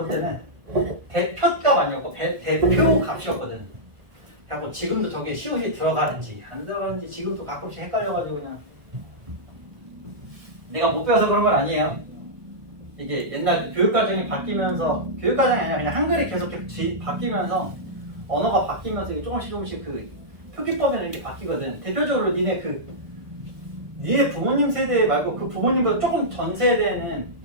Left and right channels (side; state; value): left; late; 1.4 ms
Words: 대표값 아니었고 대표값이었거든. 그래갖고 지금도 저게 시옷이 들어가는지 안 들어가는지 지금도 가끔씩 헷갈려가지고 그냥 내가 못 배워서 그런 건 아니에요. 이게 옛날 교육과정이 바뀌면서 교육과정이 아니라 그냥 한글이 계속 바뀌면서 언어가 바뀌면서 이게 조금씩 그 표기법이라는 게 바뀌거든. 대표적으로 니네 부모님 세대 말고 그 부모님보다 조금 전 세대는